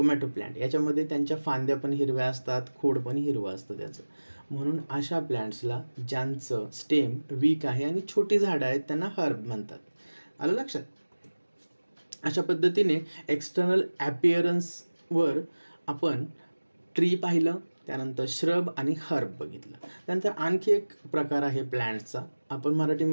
प्लांट याच्यामध्ये त्यांच्या फांद्या पण हिरव्या असतात, खोड पण हिरवं असतं त्याचं. म्हणून अशा प्लांट्सला ज्यांचं स्टेम वीक आहे आणि छोटी झाडं आहेत त्यांना हर्ब म्हणतात. आलं लक्षात? अशा पद्धतीने एक्सटर्नल ॲपिअरन्सवर आपण ट्री पाहिलं, त्यानंतर श्रब आणि हर्ब बघितलं. त्यानंतर आणखी एक प्रकार आहे प्लॅन्ट्सचा, आपण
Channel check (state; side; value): inverted; both; correlation -1.00